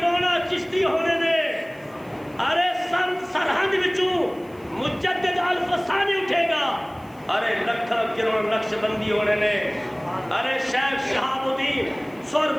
چشتی ہونے نے. ارے سرہند وچوں مجدد الفسانی اٹھے گا. ارے لکھاں کروڑ نقش بندی ہونے نے. ارے شیخ شہاب الدین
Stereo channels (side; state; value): left; noise; hiss, 29 dB below the sound